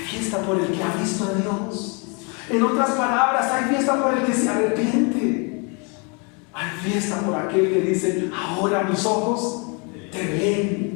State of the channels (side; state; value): right; quieter; 33.4 dB